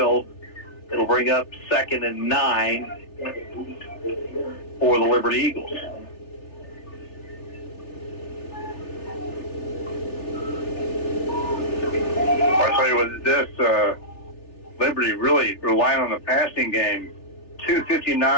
It'll bring up 2nd and 9 for the Liberty Eagles. I'll tell you what, this Liberty really relying on the passing game.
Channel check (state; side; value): late; right; 3.4 ms